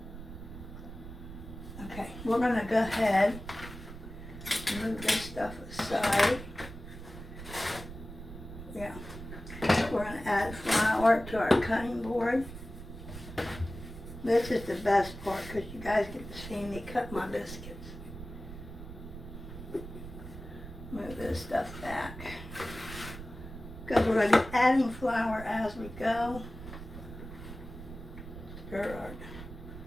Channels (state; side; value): noise; right; rumble, 12 dB below the sound